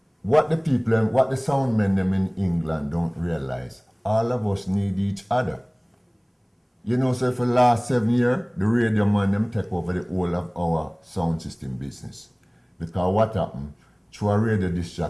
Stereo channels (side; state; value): both; identical; correlation 1.00